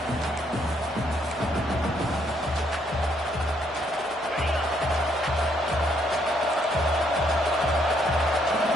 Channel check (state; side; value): normal; both; correlation 0.71